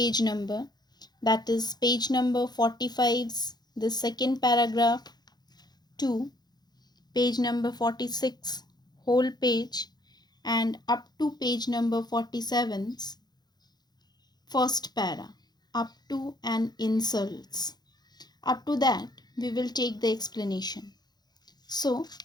number, that is page number 45's the second paragraph to page number 46 whole page and up to page number 47's first para up to and insults. Up to that we will take the explanation. So,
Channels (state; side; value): late; right; 0.20 ms